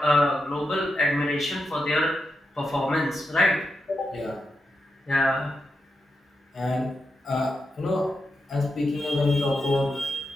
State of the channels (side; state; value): both; normal; correlation 0.87